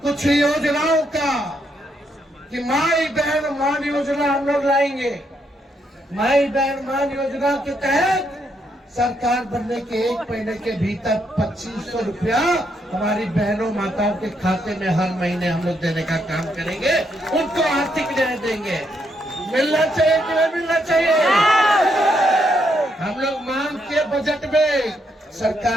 कुछ योजनाओं का कि माई बहन मान योजना हम लोग लाएंगे। माई बहन मान योजना के तहत सरकार बनने के 1 महीने के भीतर 2500 रुपया हमारी बहनों माताओं के खाते में हर महीने हम लोग देने का काम करेंगे, उनको आर्थिक न्याय देंगे। मिलना चाहिए कि नहीं मिलना चाहिए? हम लोग मांग के बजट में,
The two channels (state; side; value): normal; both; correlation 0.76